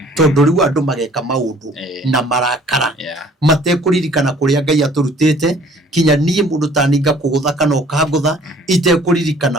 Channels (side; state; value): both; normal; correlation 0.54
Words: tondu riu andu mageka maundu na marakara matekuririkana kuria Ngai aturutite kinya nie mundu taninga kugutha kana ukangutha